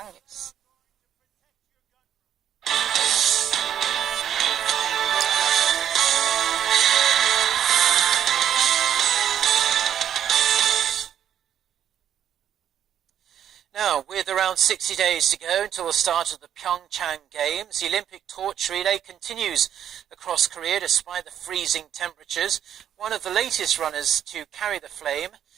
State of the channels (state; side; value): quieter; left; 9.9 dB